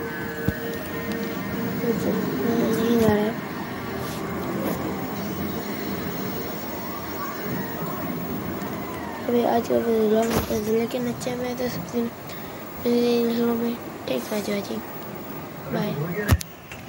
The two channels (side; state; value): both; identical; correlation 1.00